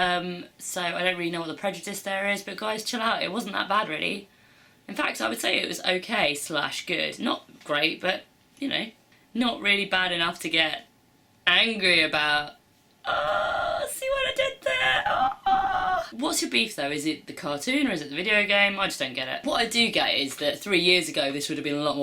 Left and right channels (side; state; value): both; identical; correlation 1.00